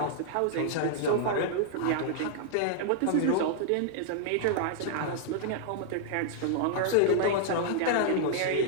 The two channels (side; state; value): both; different; correlation -0.01